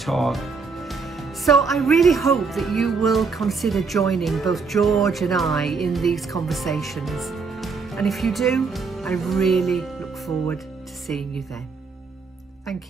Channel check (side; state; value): left; quieter; 4.8 dB